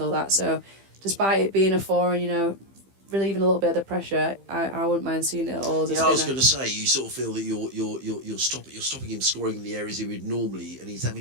that. So, despite it being a 4 and relieving a little bit of the pressure, I wouldn't mind seeing it all as a spinner. I was going to say, you sort of feel that you're stopping him scoring in the areas he would normally, and he's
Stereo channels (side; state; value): left; late; 15 ms